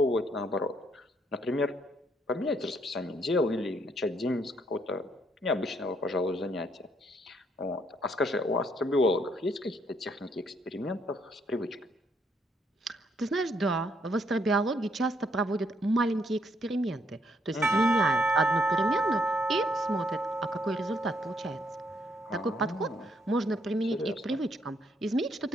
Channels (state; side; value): normal; both; correlation 0.72